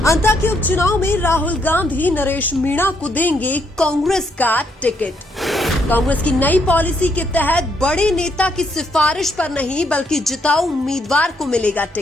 अंता के उपचुनाव में राहुल गांधी नरेश मीणा को देंगे कांग्रेस का टिकट। कांग्रेस की नई पॉलिसी के तहत बड़े नेता की सिफारिश पर नहीं बल्कि जिताऊ उम्मीदवार को मिलेगा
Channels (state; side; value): normal; both; correlation 0.74